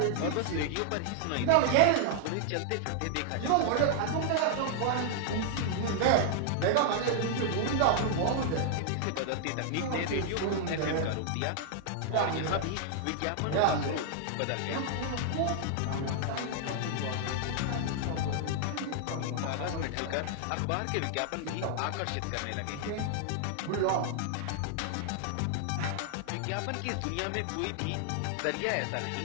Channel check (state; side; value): different; both; correlation 0.00